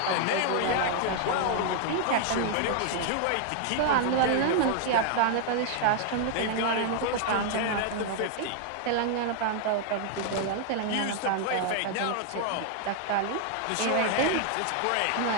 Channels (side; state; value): both; different; correlation 0.00